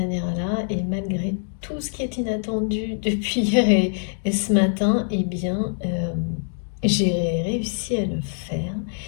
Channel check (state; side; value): silent; right; digital silence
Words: et malgré tout ce qui est inattendu depuis hier et ce matin, eh bien, j'ai réussi à le faire.